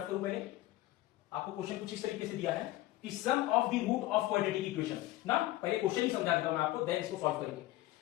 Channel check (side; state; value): right; quieter; 16.4 dB